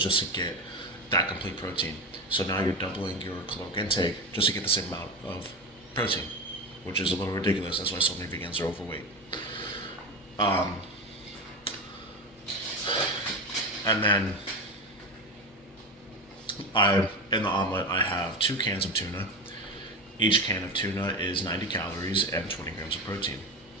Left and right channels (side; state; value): both; normal; correlation 0.22